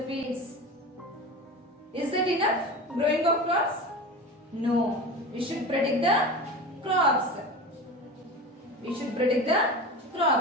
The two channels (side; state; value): both; normal; correlation 0.30